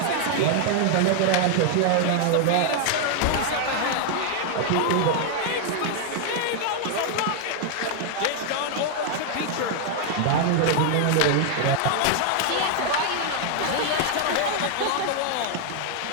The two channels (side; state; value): both; different; correlation 0.00